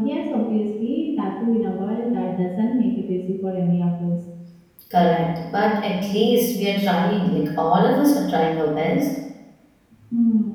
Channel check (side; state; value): both; identical; correlation 1.00